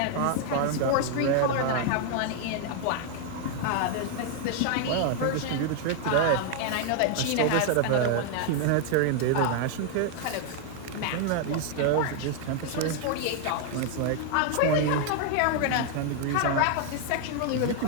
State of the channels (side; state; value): both; different; correlation 0.00